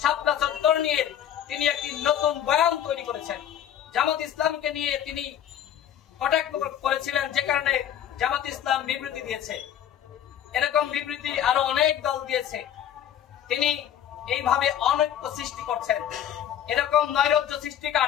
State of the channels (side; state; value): right; quieter; 10.2 dB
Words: শাপলা চত্বর নিয়ে তিনি একটি নতুন বয়ান তৈরি করেছেন। জামাত ইসলামকে নিয়ে তিনি কটাক্ষ করেছিলেন, যে কারণে জামাত ইসলাম বিবৃতি দিয়েছে। এরকম বিবৃতি আরো অনেক দল দিয়েছে। তিনি এইভাবে অনৈক্য সৃষ্টি করছেন। এরকম নৈরাজ্য